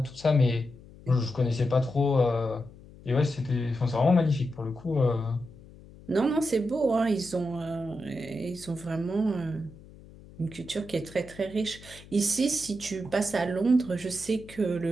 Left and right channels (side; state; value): left; noise; hum, 20 dB below the sound